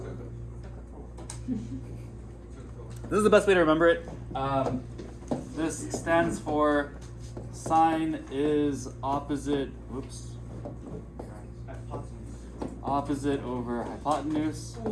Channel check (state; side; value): identical; both; correlation 1.00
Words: This is the best way to remember it. This stands for sine is opposite, whoops, opposite over hypotenuse.